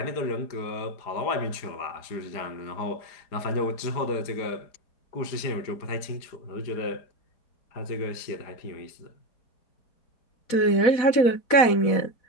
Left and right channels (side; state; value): right; late; 4.1 ms